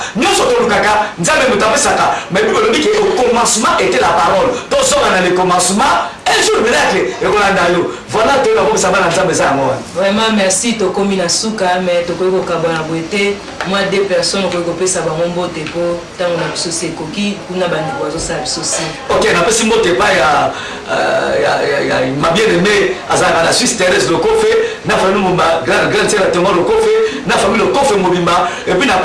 nyonso tolukaka nzambe moto apesaka mais bible elobi ke au commencement était la parole tozonga na le commencement un jour miracle ekolanda yo voilà toyeba komisa bana nzambe eza yango wana vraiment merci tokomi na suka mais tokoki kokabwa na boye te moi deux personnes okoki kopesa bango mbote mpo ntango na biso si ekoki kuna bandeko bazosala biso si ok napesi mbote epai ya ma bien aimé azalaka na Suisse Thérèse Lokofe na famille mobimba grande sœur Thomas Lokofe na famille Lokofe mobimba et puis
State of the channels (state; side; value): identical; both; correlation 1.00